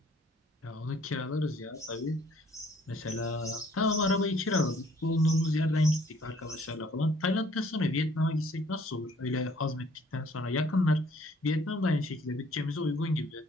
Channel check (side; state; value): both; normal; correlation 0.60